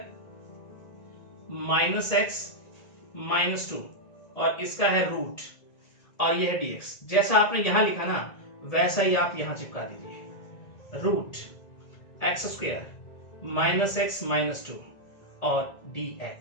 minus X minus 2 और इसका है रूट और ये है dx। जैसा आपने यहां लिखा ना वैसा ही आप यहां चिपका दीजिए, root X square minus X minus 2 और dx।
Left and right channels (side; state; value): right; late; 1.8 ms